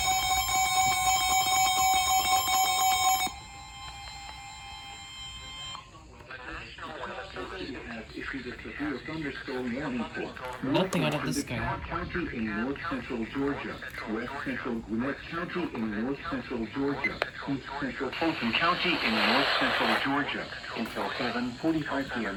Has issued a severe thunderstorm warning for Nothing out of this guy. DeKalb County in north central Georgia, west central Gwinnett County in north central Georgia, east central Fulton County in north central Georgia until 7:45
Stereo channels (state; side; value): identical; both; correlation 1.00